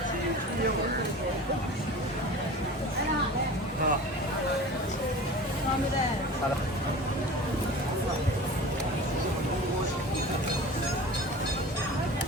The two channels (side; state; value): both; normal; correlation 0.37